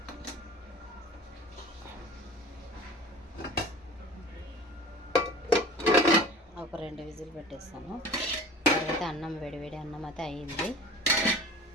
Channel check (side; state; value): both; normal; correlation 0.40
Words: ఒక 2 విజిల్ పెట్టేస్తాను. తర్వాత అన్నం వేడివేడి అన్నం అయితే అయ్యింది.